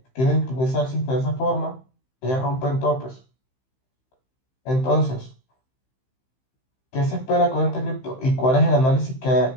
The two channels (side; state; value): right; late; 15 ms